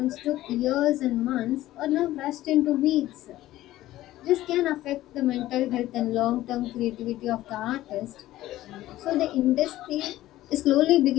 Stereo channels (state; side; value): quieter; right; 15.3 dB